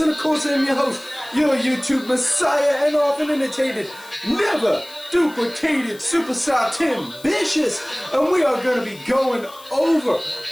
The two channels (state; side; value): noise; left; hiss, 21 dB below the sound